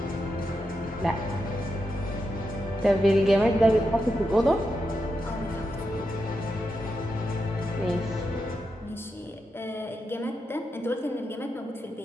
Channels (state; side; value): normal; both; correlation 0.86